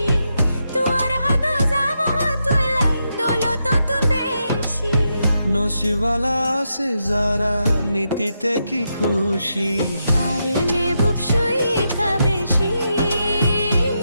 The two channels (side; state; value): both; inverted; correlation -0.84